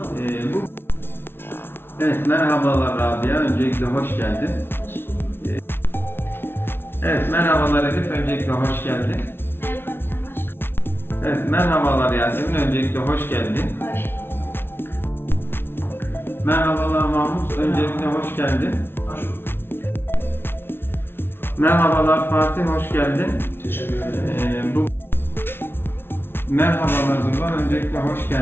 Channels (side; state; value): right; late; 0.11 ms